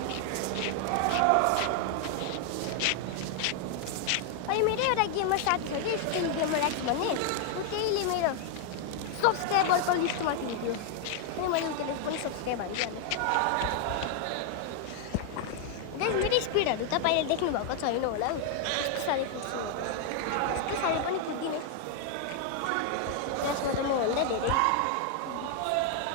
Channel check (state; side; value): different; both; correlation 0.00